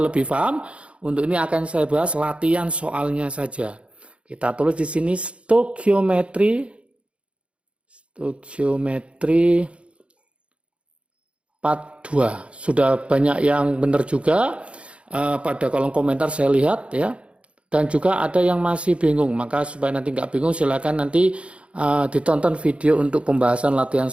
lebih paham. Untuk ini akan saya bahas latihan soalnya saja. Kita tulis di sini stoikiometri part 2. Sudah banyak yang benar juga pada kolom komentar saya lihat ya. Dan juga ada yang masih bingung. Maka supaya nanti nggak bingung silakan nanti ditonton video untuk pembahasan latihan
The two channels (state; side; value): late; left; 0.060 ms